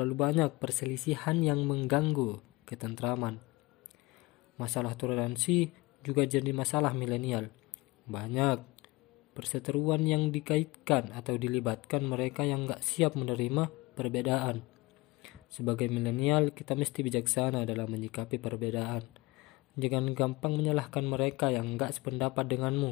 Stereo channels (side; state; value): right; quieter; 22.3 dB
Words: banyak perselisihan yang mengganggu ketentraman. Masalah toleransi juga jadi masalah milenial. Banyak perseteruan yang dikaitkan atau dilibatkan mereka yang gak siap menerima perbedaan. Sebagai milenial, kita mesti bijaksana dalam menyikapi perbedaan. Jangan gampang menyalahkan mereka yang enggak sependapat